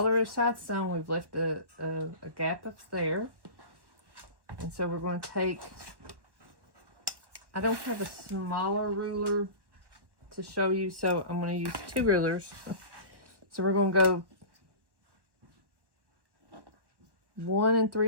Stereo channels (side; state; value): left; late; 1.1 ms